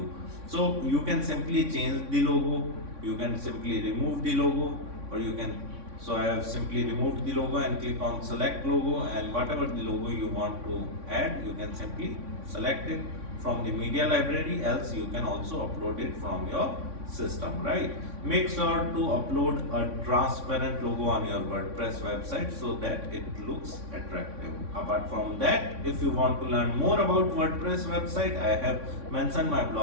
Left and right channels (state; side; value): late; left; 3.6 ms